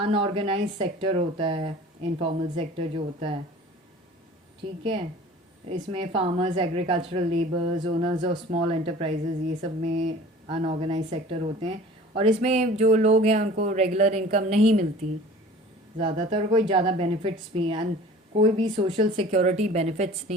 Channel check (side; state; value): both; normal; correlation 0.45